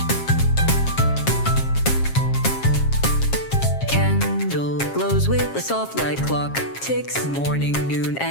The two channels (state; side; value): late; right; 7.4 ms